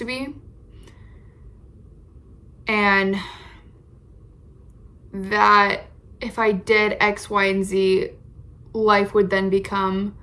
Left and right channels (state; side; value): identical; both; correlation 1.00